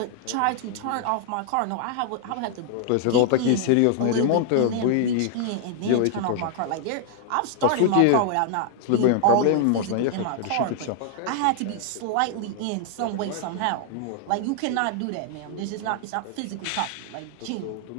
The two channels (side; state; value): both; different; correlation 0.00